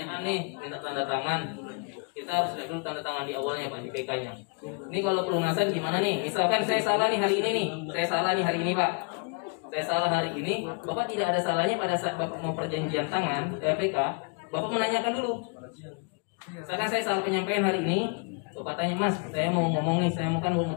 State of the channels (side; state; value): right; quieter; 35.7 dB